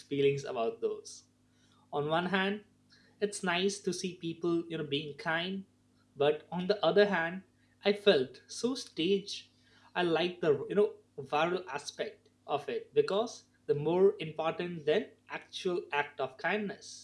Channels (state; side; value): identical; both; correlation 1.00